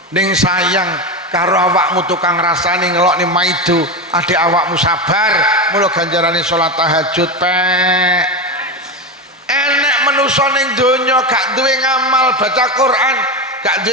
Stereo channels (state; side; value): normal; both; correlation 0.17